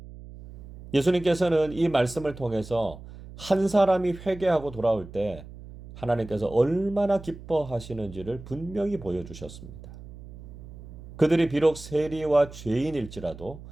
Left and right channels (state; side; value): noise; right; hum, 16 dB below the sound